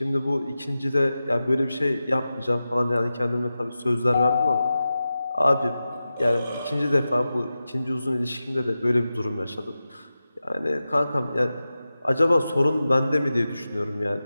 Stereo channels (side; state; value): both; inverted; correlation -0.93